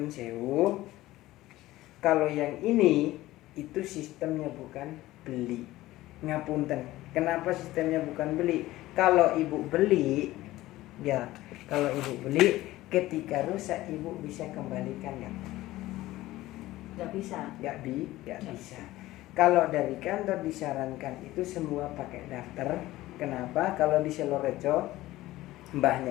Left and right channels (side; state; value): right; quieter; 16.8 dB